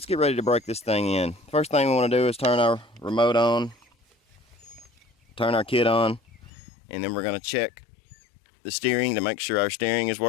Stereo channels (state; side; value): drops out; right; at 6.5 s